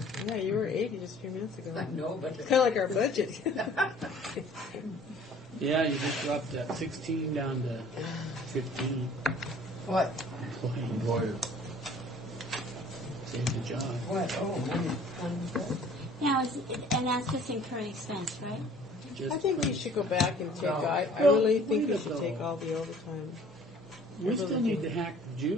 Yeah, you were 80 just a few minutes ago. I know, but It's kind of like our budget. Yeah, you just dropped that 16 down to 15. What? Employed. Saved the job. What? Oh, Now, and that's just incurring expense, right? I think you should go back and take, I really think you should take all the overtime. We still need to hack the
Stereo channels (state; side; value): normal; both; correlation 0.52